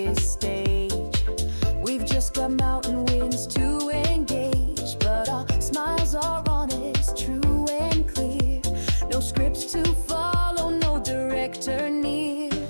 stage. We've just got mountain winds to engage, but our smiles are honest, true and clear. No scripts to follow, no director near.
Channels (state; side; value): inverted; both; correlation -1.00